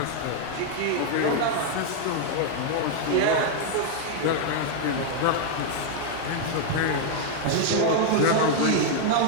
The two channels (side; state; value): both; different; correlation 0.00